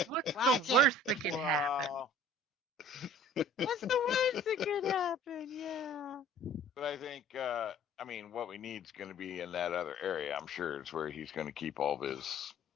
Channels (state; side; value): normal; both; correlation 0.49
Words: What's Watch the it. worst that can happen? Wow. What's the worst that could happen? Yeah. But I think, I mean, what we need is going to be in that other area. I'm sure it's where he's going to keep all of his